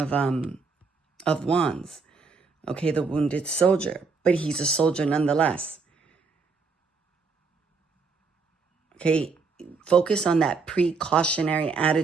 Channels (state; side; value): quieter; left; 4.7 dB